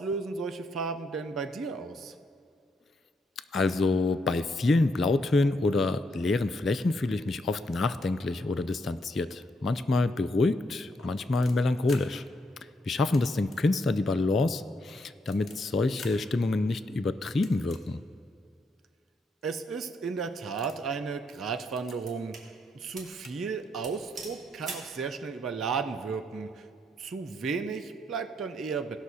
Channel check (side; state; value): both; normal; correlation 0.77